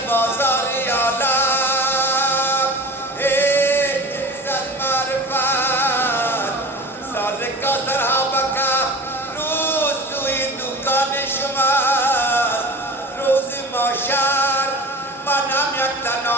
بازار عالم هیچ از معرفت، سالکا صحابکا روز سوی دکان شماست. روز محشر منم یک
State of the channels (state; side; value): normal; both; correlation 0.36